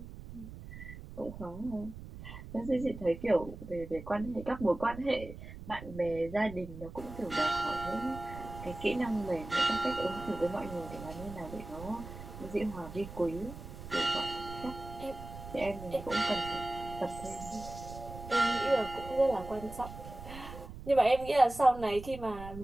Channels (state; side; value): noise; right; rumble, 12 dB below the sound